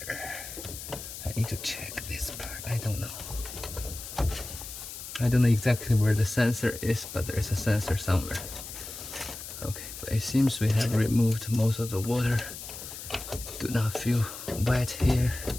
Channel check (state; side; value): noise; left; hiss, 10 dB below the sound